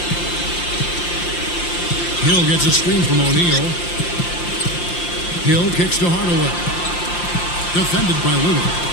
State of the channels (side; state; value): right; late; 5.7 ms